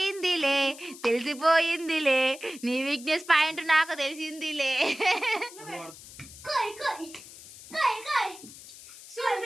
నీ వీక్నెస్ పాయింట్ నాకు తెలిసిందిలే.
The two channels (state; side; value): noise; left; hiss, 17 dB below the sound